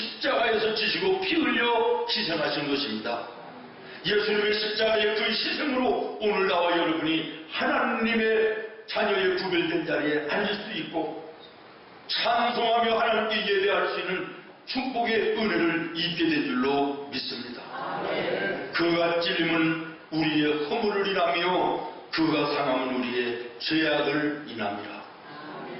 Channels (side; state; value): both; identical; correlation 1.00